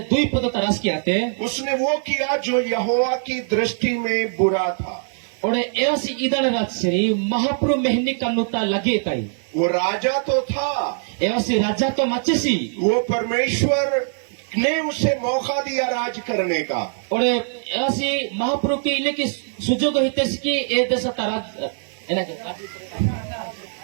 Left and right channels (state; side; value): silent; left; digital silence